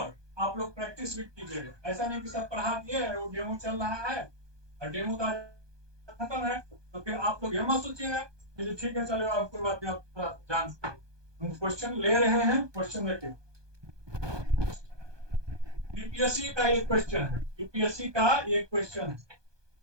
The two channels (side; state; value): left; late; 1.2 ms